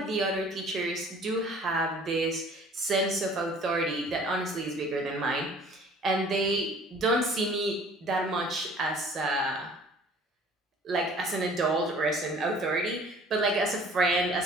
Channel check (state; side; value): normal; both; correlation 0.51